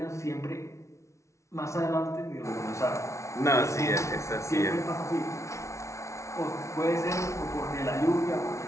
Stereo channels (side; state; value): right; late; 0.14 ms